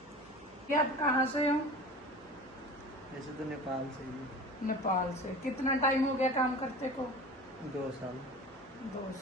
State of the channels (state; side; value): noise; right; hum, 30 dB below the sound